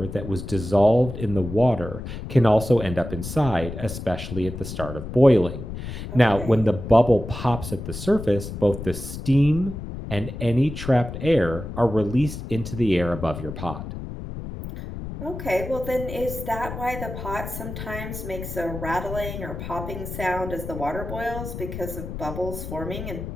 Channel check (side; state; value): left; noise; rumble, 8 dB below the sound